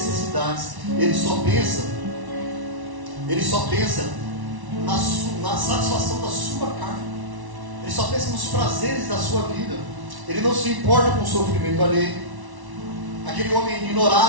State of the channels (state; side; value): late; left; 1.1 ms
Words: Ele só pensa na satisfação da sua carne. Ele só pensa nos prazeres da sua vida. Ele não se importa com o sofrimento alheio. Aquele homem